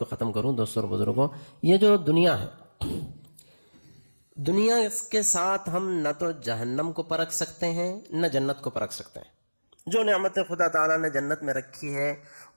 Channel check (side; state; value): both; inverted; correlation -1.00